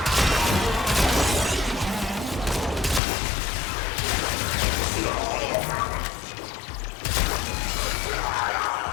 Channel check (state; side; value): drops out; right; at 3.0 s